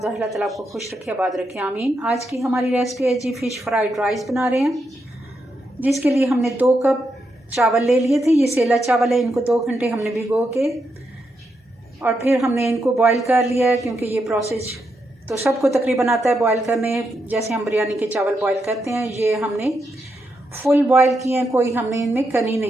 अल्लाह ताला आपको खुश रखे, आबाद रखे, आमीन। आज की हमारी रेसिपी है जी फ़िश फ्राइड राइस बना रहे हैं, जिसके लिए हमने 2 कप चावल ले लिए थे। ये सेला चावल है, इनको 2 घंटे हमने भिगो के और फिर हमने इनको बॉईल कर लिया है, क्योंकि ये प्रोसेस तो सबको तकरीबन आता है बॉईल करने, जैसे हम बिरयानी के चावल बॉईल करते हैं। ये हमने फुल बॉईल किए हैं, कोई हमने इनमें कनी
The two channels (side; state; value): both; normal; correlation 0.83